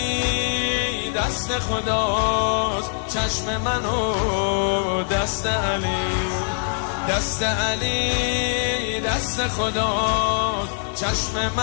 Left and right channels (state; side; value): silent; right; digital silence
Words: دست خداست، چشم منو دست علی، دست علی دست خداست، چشم